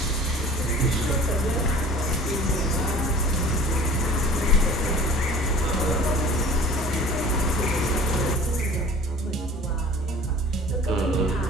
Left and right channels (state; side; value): normal; both; correlation 0.45